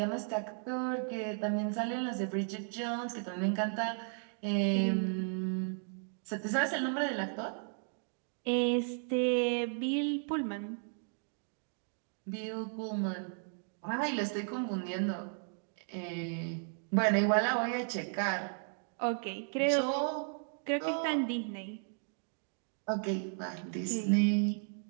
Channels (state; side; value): silent; left; 54 dB below the other